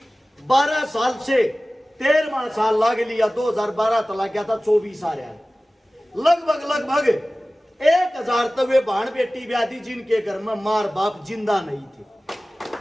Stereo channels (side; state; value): both; normal; correlation 0.97